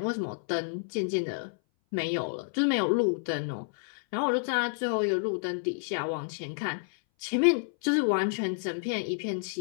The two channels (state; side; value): silent; right; 58 dB below the other